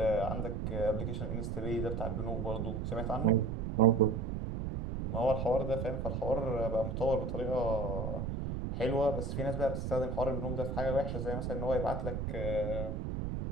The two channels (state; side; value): noise; right; rumble, 3 dB below the sound